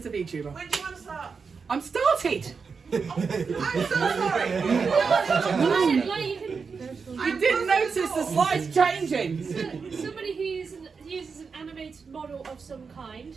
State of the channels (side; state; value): left; quieter; 5.3 dB